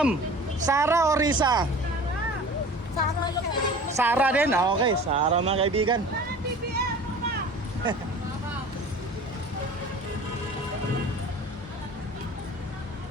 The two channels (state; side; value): normal; both; correlation 0.42